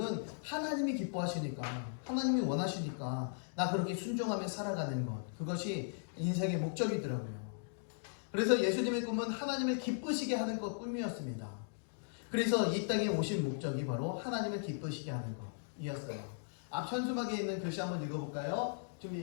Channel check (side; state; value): right; silent; digital silence